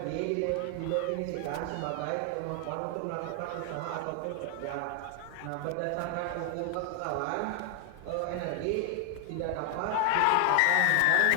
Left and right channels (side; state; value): both; different; correlation 0.00